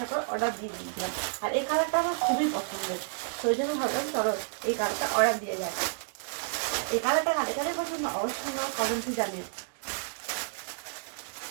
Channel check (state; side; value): silent; left; digital silence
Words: অর্ডার দিয়ে দিয়েছিলাম। আর এই কালারটা আমার খুবই পছন্দের, তো ওই জন্য ভাবলাম চলো এই কালারটা অর্ডার দিয়ে যায়। এই কালারটা কাদের কাদের পছন্দ অবশ্যই আমার কমেন্টে জানিও।